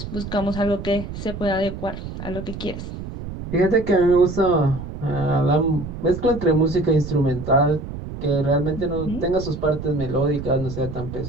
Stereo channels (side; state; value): right; noise; rumble, 9 dB below the sound